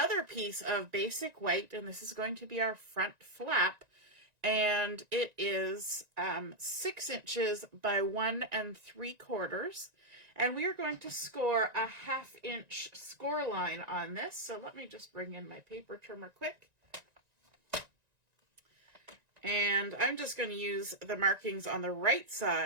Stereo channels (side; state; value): left; late; 1.9 ms